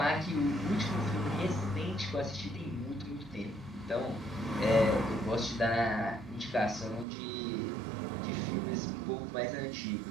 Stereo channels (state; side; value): drops out; left; at 7.1 s